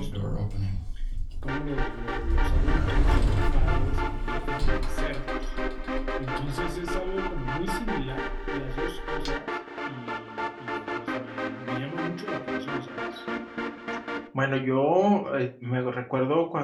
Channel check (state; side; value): identical; both; correlation 1.00